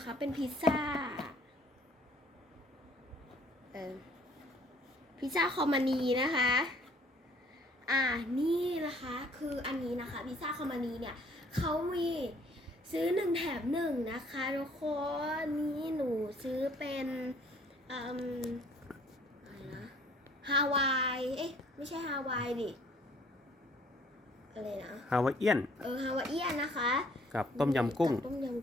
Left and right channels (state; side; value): normal; both; correlation 0.59